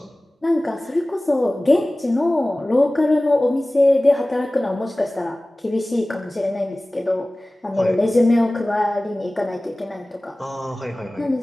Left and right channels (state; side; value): normal; both; correlation 0.98